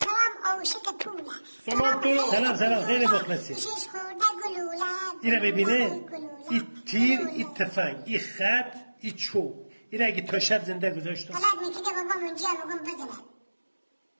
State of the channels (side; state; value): both; inverted; correlation -1.00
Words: ترام اوشک پوله. سلام خیلی مخلصی. شش خورده گلوله. اینا ببینه این تیر این تفنگ این خط این چوب این اگه تا شب زنده گذاشتم غلط میکرده بابام اونجا بگم بزنه.